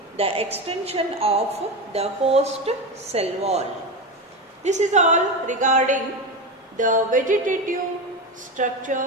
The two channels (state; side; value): normal; both; correlation 0.19